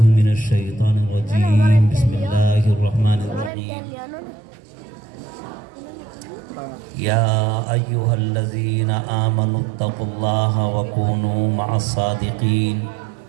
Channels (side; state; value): left; drops out; at 3.5 s